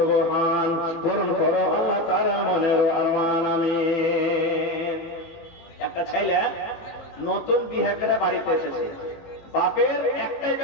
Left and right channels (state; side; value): late; right; 18 ms